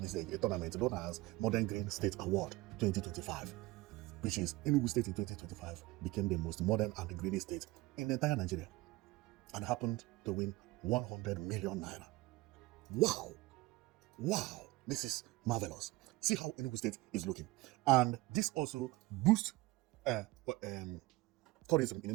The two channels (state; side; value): quieter; left; 20.6 dB